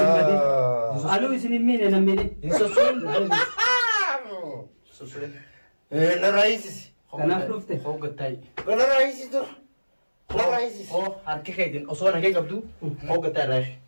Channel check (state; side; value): inverted; both; correlation -1.00